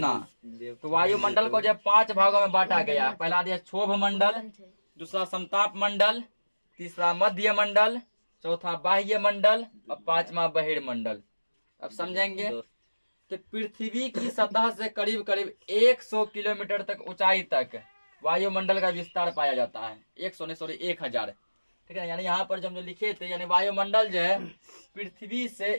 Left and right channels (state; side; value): inverted; both; correlation -1.00